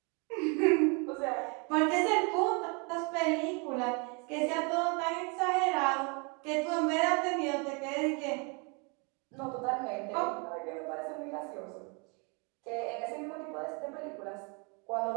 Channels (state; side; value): quieter; left; 33.0 dB